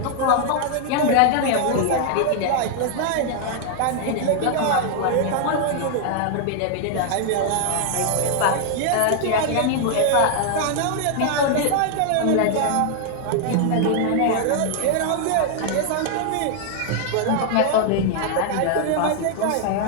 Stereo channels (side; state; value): both; different; correlation 0.00